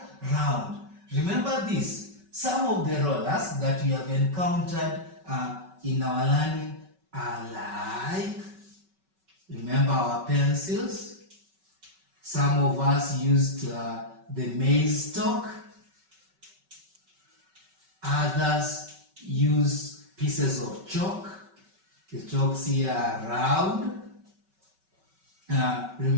round. Remember this, some of the rollers that we have encountered in our learning are like, remember our pencils? Some of us used the maize stalk. Others use pieces of chalk. The chalks here are round.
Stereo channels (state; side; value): late; left; 5.3 ms